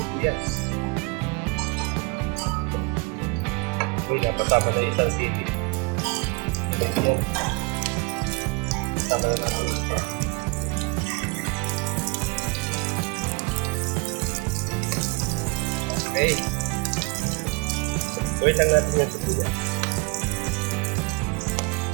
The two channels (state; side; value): quieter; left; 29.3 dB